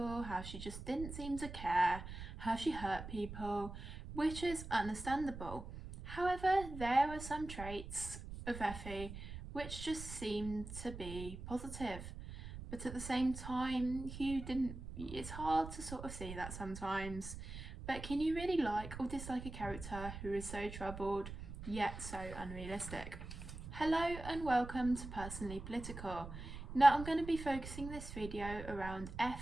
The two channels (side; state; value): right; noise; rumble, 10 dB below the sound